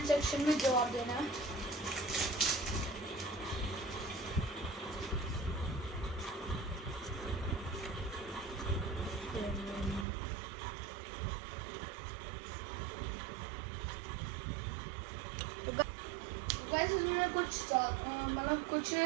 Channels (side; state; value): left; drops out; at 10.1 s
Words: सेक्शन में जवाब देना है। वैसे इसमें कुछ मतलब कुछ